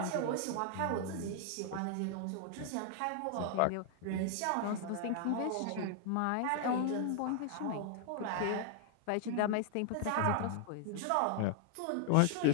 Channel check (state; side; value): different; both; correlation 0.00